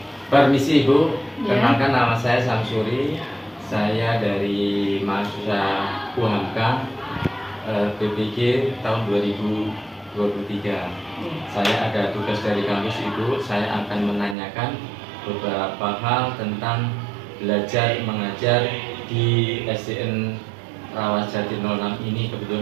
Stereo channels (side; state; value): left; drops out; at 14.4 s